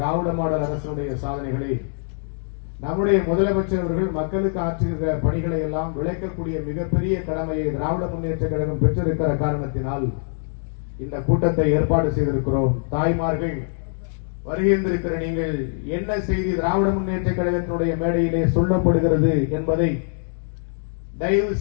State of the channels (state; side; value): silent; right; digital silence